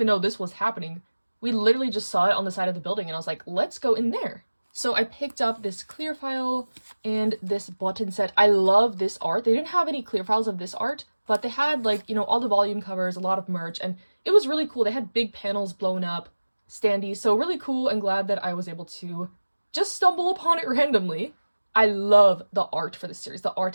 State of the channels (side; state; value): both; inverted; correlation -1.00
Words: know this was happening. We literally just saw it on the side of the building, and I was like, let's go in there. So I picked up this clear file and this button set. I love this art. They didn't have any clear files of this art, but they had, like, you know, all the volume covers, a lot of merch, and it was really cool. They had big panels blown up, standees, so really cool, and glad that I was able to just stumble upon it randomly. I love the art for this series. The